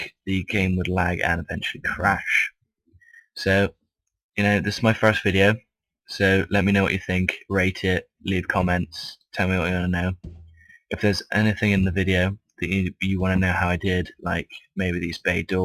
the game would lag and eventually crash. So, you know, this is my first video, so let me know what you think, rate it, leave comments, tell me what you want to know. If there's anything in the video that you want to know how I did, like maybe these bay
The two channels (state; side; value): identical; both; correlation 1.00